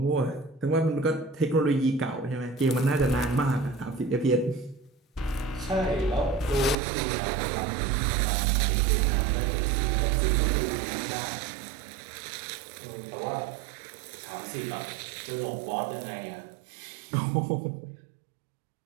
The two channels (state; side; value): drops out; left; at 6.8 s